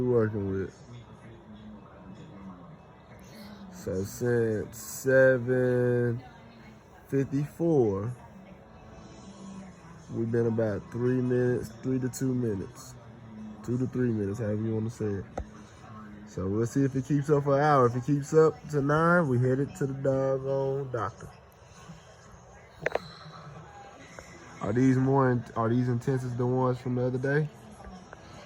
working with. So since 7:54, we've been about 3 minutes, 3 to 2 minutes, 2 to 3 minutes, however you want to say it. So we'll see if it keeps up for an hour. If it keeps up to 9, we headed to the doggone doctor. Are these intense as the ones from the other day?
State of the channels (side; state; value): both; identical; correlation 1.00